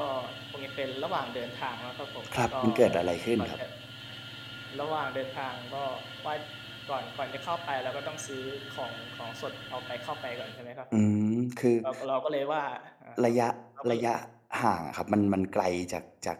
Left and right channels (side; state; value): both; identical; correlation 1.00